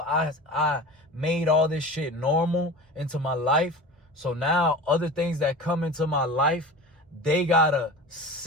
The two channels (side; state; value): both; normal; correlation 0.34